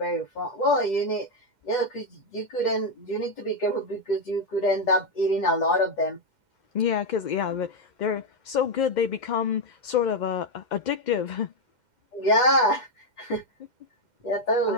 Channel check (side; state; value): right; late; 2.1 ms